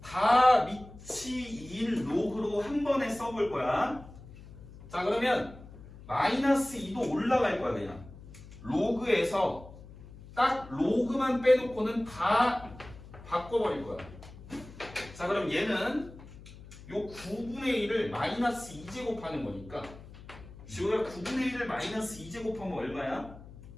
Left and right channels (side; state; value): left; noise; hum, 17 dB below the sound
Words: 다 밑이 2인 로그로 한 번에 써볼 거야. 자, 그러면 마이너스 2도 올라갈 거야. 그냥 로그에서 딱 로그만 빼놓고는 다 바꿔버릴 거야. 자, 그럼 얘는 요 9분의 1을 마이너스 2제곱하는 거니까 지호야 9분의 1을 마이너스 2제곱하면 얼마야?